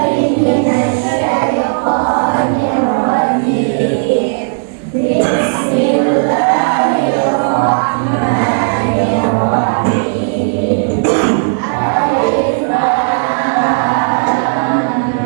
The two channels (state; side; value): silent; left; digital silence